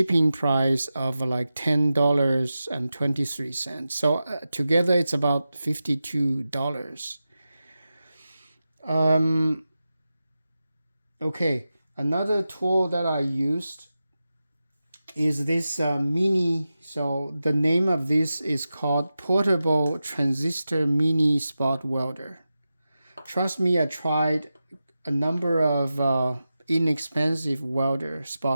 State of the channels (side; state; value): both; inverted; correlation -0.92